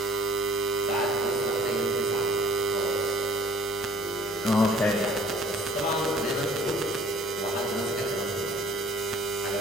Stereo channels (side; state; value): both; normal; correlation 0.54